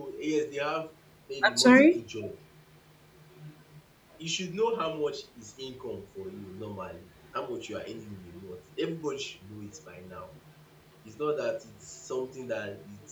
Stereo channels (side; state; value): both; identical; correlation 1.00